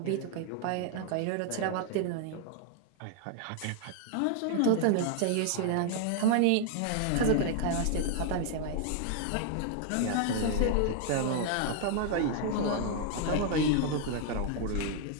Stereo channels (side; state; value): both; different; correlation 0.00